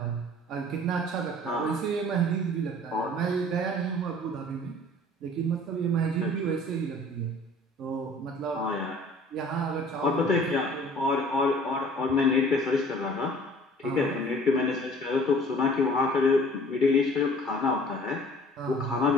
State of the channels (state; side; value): normal; both; correlation 0.50